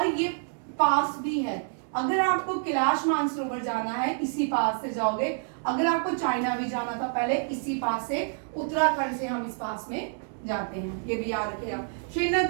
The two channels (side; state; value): left; silent; 59 dB below the other